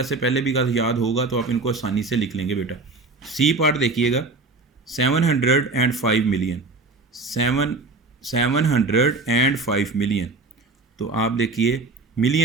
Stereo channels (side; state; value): left; quieter; 3.6 dB